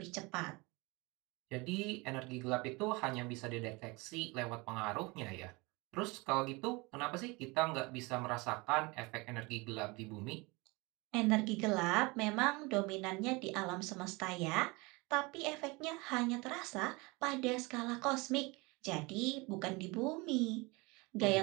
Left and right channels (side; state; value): left; quieter; 25.5 dB